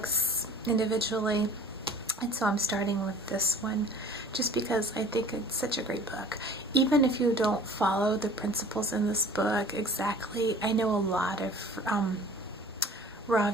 individually, and so I'm starting with this one just because I think it's such a great book. Even if you don't follow the principles in this book exactly, I know a lot of raw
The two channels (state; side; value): normal; both; correlation 0.47